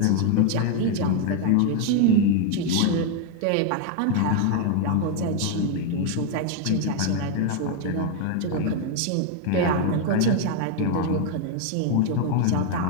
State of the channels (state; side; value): different; both; correlation 0.00